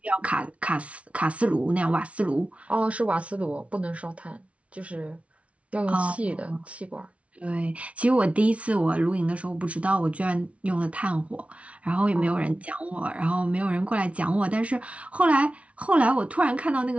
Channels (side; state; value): left; late; 0.063 ms